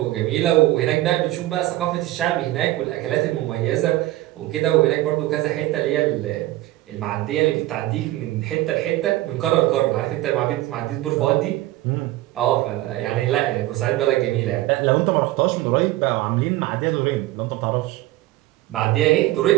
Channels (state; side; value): quieter; left; 16.7 dB